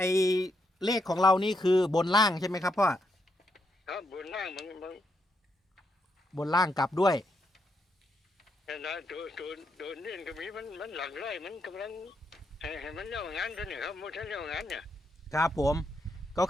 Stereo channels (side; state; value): both; normal; correlation 0.80